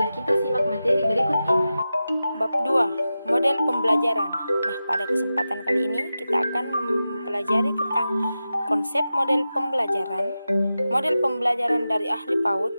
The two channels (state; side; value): inverted; both; correlation -0.93